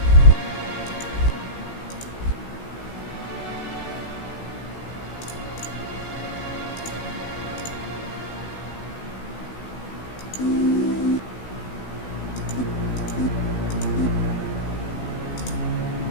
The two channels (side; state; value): right; late; 16 ms